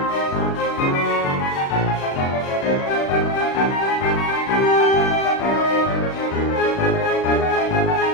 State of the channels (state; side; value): late; right; 36 ms